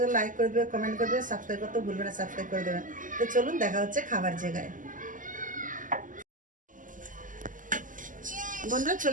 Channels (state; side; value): late; left; 0.38 ms